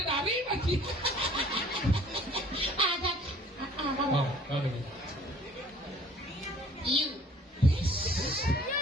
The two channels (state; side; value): normal; both; correlation 0.54